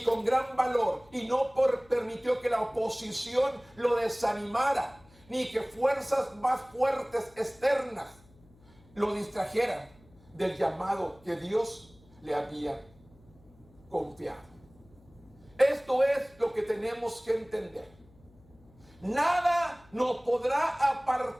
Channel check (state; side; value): noise; left; hum, 27 dB below the sound